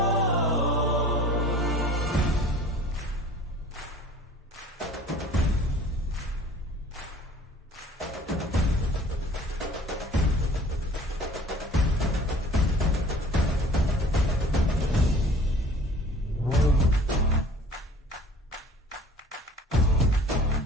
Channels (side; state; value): both; normal; correlation 0.48